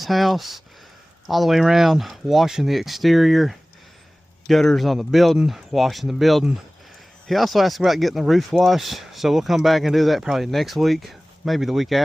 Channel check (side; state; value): both; normal; correlation 0.98